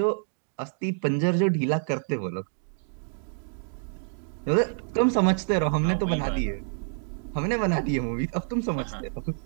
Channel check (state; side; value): silent; left; digital silence